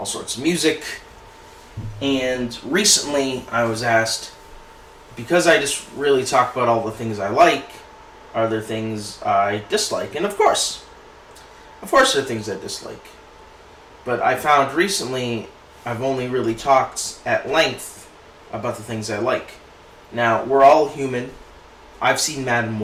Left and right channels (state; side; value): identical; both; correlation 1.00